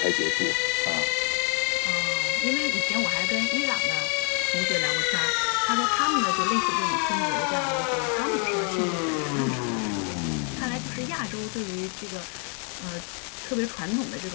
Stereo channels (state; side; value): quieter; right; 37.6 dB